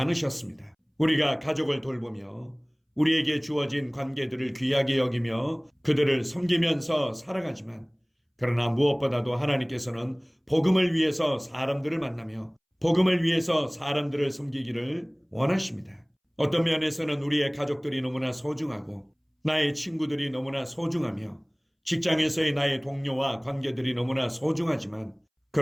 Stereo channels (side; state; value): both; identical; correlation 1.00